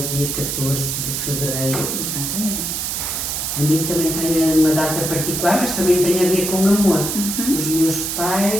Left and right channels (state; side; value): noise; right; hiss, 2 dB below the sound